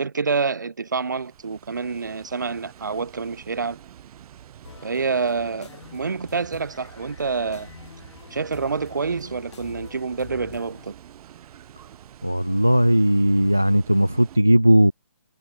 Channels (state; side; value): inverted; both; correlation -0.88